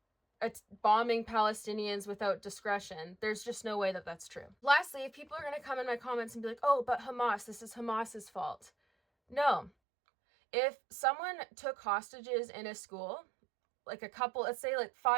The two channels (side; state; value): left; drops out; at 9.7 s